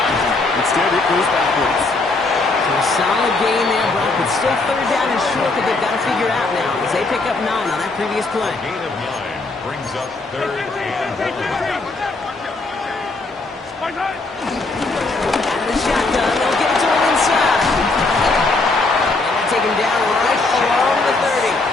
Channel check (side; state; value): right; quieter; 3.4 dB